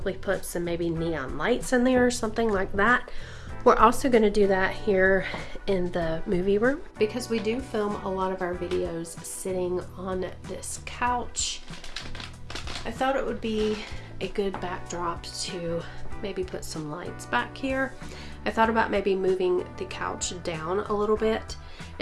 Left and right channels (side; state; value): both; identical; correlation 1.00